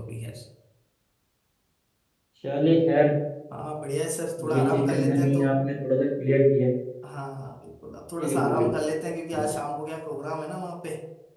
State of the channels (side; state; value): both; identical; correlation 1.00